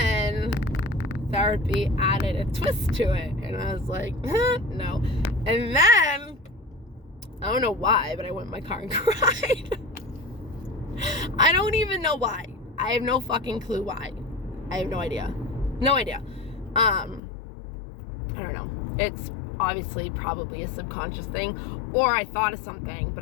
therapy added a twist to it, and I was like, no. And then, I don't know why, but I went in my car and cried. I don't even know why. I have no fucking clue why. I have no idea. No idea. I don't know. It's obviously probably a subconscious thing, or I thought of something, but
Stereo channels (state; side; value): drops out; right; at 17.2 s